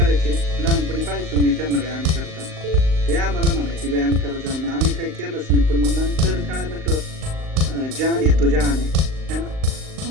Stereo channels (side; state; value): left; late; 38 ms